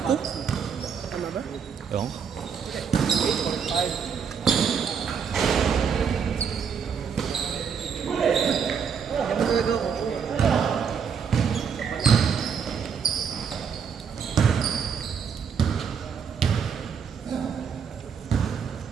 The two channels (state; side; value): quieter; left; 6.8 dB